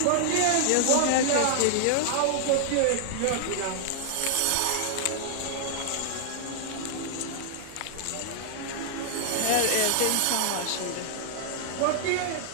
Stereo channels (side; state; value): both; different; correlation -0.01